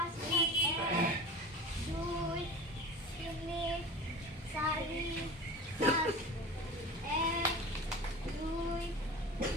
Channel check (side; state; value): both; normal; correlation 0.35